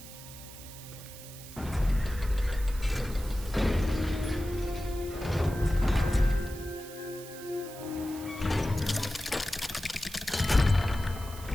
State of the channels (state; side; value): noise; right; hiss, 15 dB below the sound